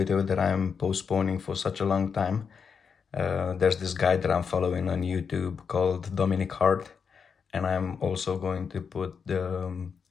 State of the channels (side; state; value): right; quieter; 6.2 dB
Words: that I'm postponing for such a long time. There's this guy that I'm following on YouTube called Dominic Hart, and I'm also going to put the